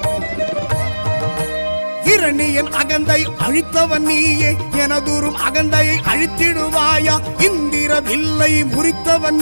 இரணியன் அகந்தை அழித்தவன் நீயே எனதூரும் அகந்தையை அழித்திடுவாயா இந்திர வில்லை முறித்தவன்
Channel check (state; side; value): inverted; both; correlation -1.00